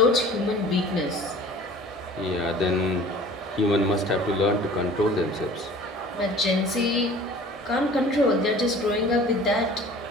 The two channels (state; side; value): normal; both; correlation 0.45